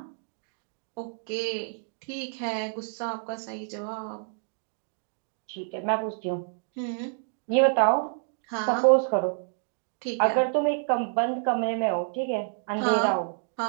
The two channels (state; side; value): silent; left; digital silence